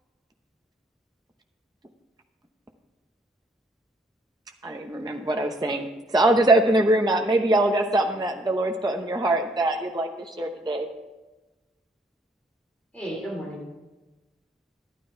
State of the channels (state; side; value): normal; both; correlation 0.65